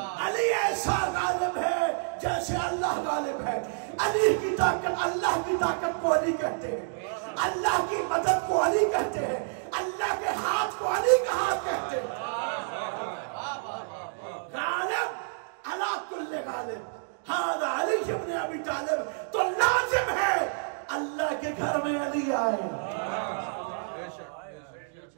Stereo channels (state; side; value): silent; left; digital silence